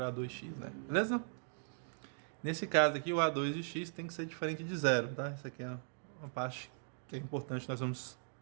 A2x, né? Beleza? Nesse caso aqui, o A2 de x tem que ser diferente de zero, tá? Isso aqui é uma parte que é importante, nós vamos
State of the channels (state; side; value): silent; left; digital silence